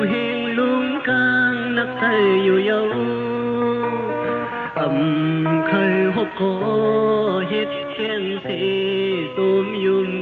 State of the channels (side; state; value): both; identical; correlation 1.00